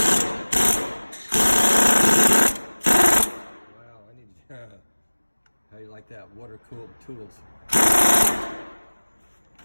Wow, I need how you like that? Water-cooled tools.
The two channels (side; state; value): both; inverted; correlation -1.00